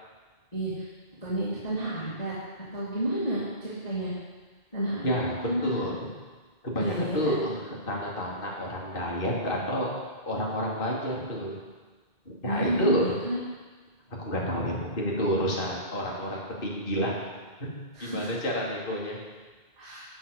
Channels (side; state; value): right; late; 2.2 ms